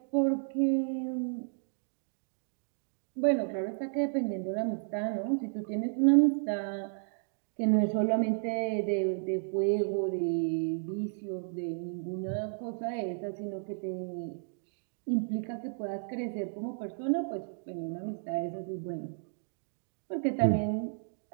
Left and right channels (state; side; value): silent; left; digital silence